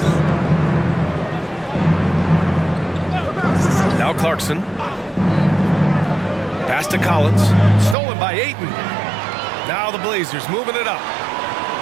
Now Clarkson. Pass to Collins. Stolen by Ayton. Now the Blazers moving it up.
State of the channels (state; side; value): drops out; left; at 8.0 s